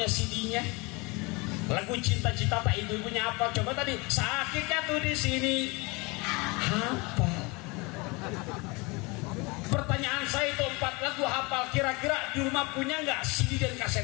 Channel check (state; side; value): quieter; right; 26.7 dB